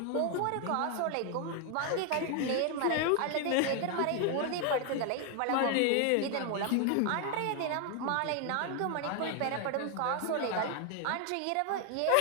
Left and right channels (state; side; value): different; both; correlation 0.01